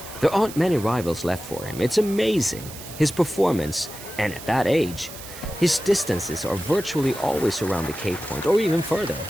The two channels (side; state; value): right; noise; hiss, 14 dB below the sound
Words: There aren't many rivals left for him. It's amazing. His performance, and at that age, his distances are virtually always around the K point, or even further.